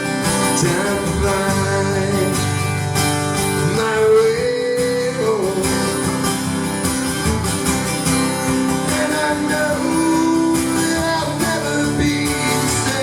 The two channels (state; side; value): identical; both; correlation 1.00